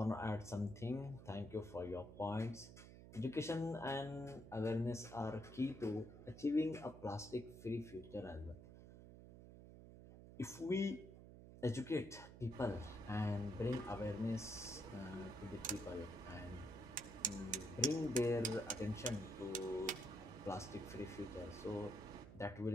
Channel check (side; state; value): right; noise; hum, 15 dB below the sound